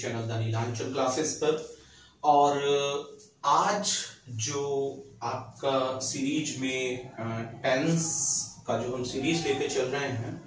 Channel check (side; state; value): both; identical; correlation 1.00